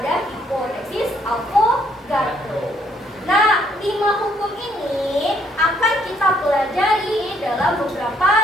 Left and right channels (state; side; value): normal; both; correlation 0.68